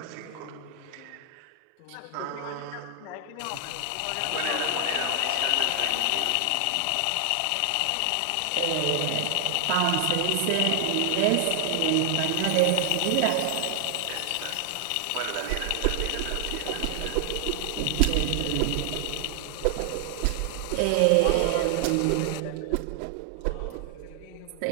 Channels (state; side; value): different; both; correlation 0.00